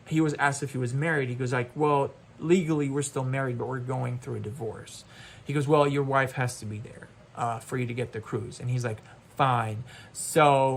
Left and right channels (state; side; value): identical; both; correlation 1.00